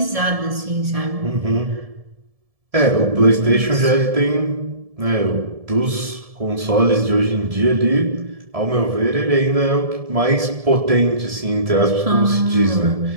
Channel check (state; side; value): late; left; 1.7 ms